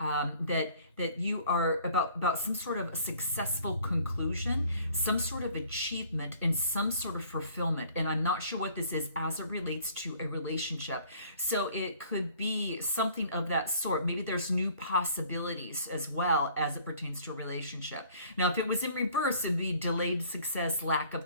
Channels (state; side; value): inverted; both; correlation -0.55